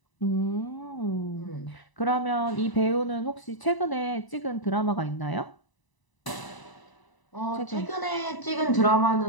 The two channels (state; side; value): late; right; 1.0 ms